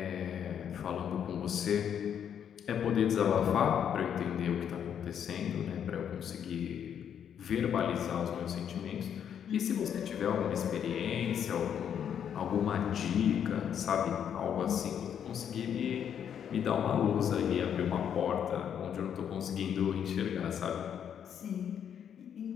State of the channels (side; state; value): right; quieter; 8.7 dB